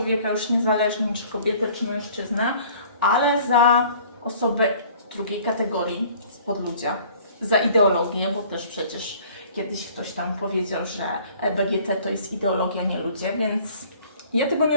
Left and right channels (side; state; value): both; inverted; correlation -0.53